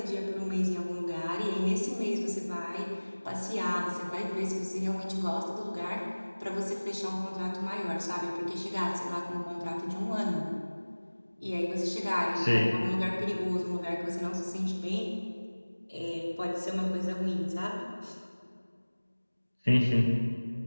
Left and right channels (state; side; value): inverted; both; correlation -1.00